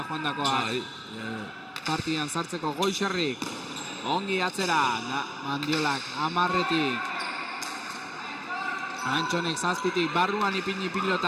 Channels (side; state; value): both; identical; correlation 1.00